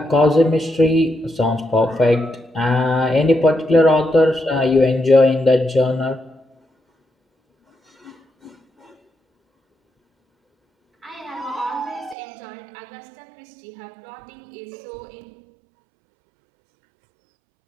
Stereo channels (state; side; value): drops out; left; at 12.2 s